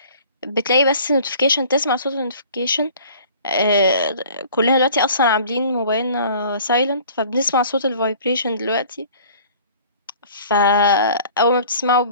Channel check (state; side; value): inverted; both; correlation -0.49